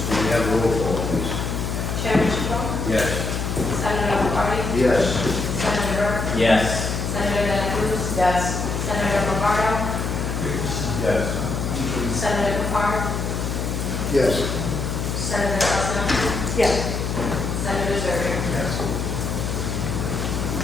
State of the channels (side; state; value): left; noise; hum, 2 dB below the sound